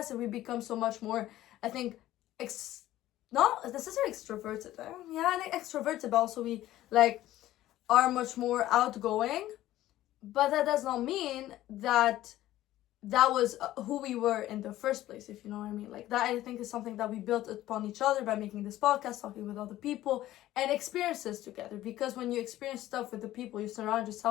and we become so much more, I think, not necessarily extroverted. Extroverted, but also we like are much more outgoing. But that does not mean that was who we were in the first place, if you know what I mean. Like, that, I think, is something that we built upon each other by making this podcast, talking with other people, and experiences together. Because when you experience stuff with the people you surround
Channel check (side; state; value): right; quieter; 14.5 dB